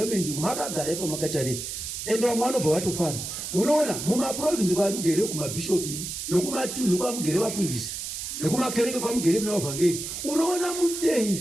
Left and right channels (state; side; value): noise; right; hiss, 6 dB below the sound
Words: makagara ipo makatarira. Ende vamwe vanobva vatofara. Munoona mumaprovinsi kwari kugere kumabhishopi nokumatunhu kwamugere vafundisi nekumakereke kwamugere mevavhangeri. Unoona